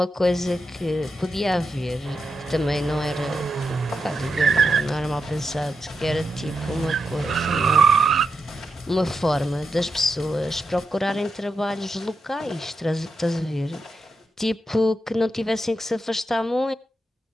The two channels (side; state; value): both; normal; correlation 0.86